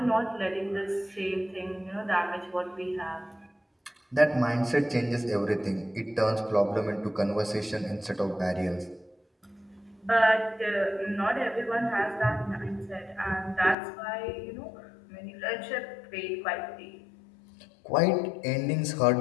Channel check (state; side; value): drops out; right; at 13.8 s